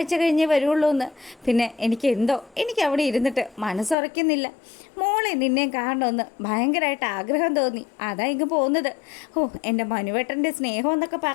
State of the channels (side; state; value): right; drops out; at 4.0 s